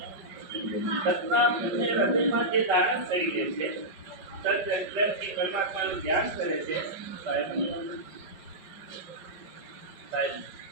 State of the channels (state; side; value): late; left; 5.4 ms